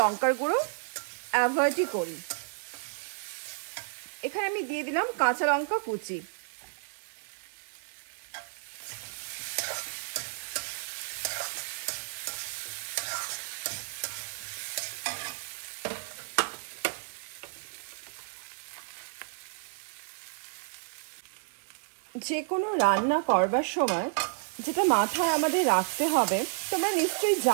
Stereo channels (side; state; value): left; silent; 57 dB below the other